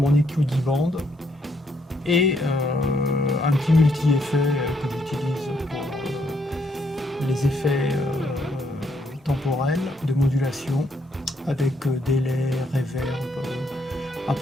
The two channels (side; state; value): both; normal; correlation 0.73